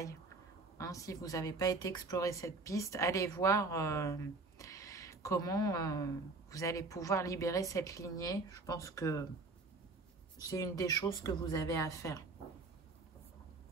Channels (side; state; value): left; quieter; 3.6 dB